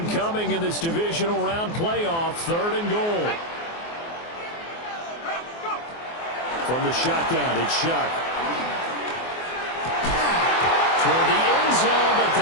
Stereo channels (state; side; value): late; right; 24 ms